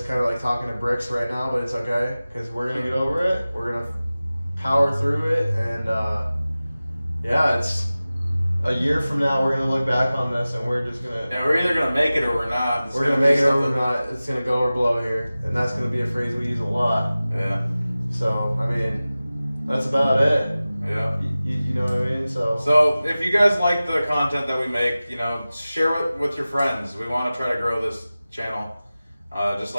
kind of like talking to bricks right now, but it's okay because we're gonna get over it. We're gonna power through it, and yeah, it's a year from now. We're gonna look back on this, and we're just gonna. Yeah, we're either gonna make it or we're not. We're gonna make it or we're not. It's gonna go or blow here, and that's gonna be a phrase we use a lot. Yeah. So I mean, that's about it. Yeah. You know what I mean? So if you guys like the content that we make, you know, share it with your friends. We want to try to grow this channel, just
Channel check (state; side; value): inverted; both; correlation -0.97